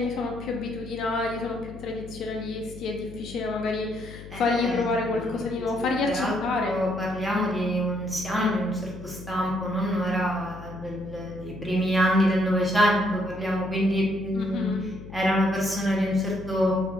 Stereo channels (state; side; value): noise; left; hum, 14 dB below the sound